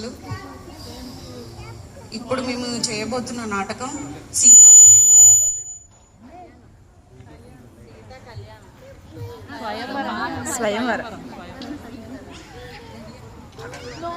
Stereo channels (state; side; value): identical; both; correlation 1.00